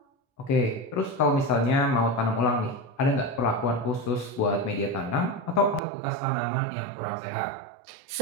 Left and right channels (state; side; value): drops out; left; at 5.8 s